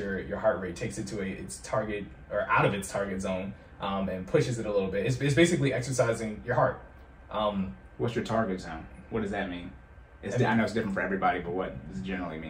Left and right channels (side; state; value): both; identical; correlation 1.00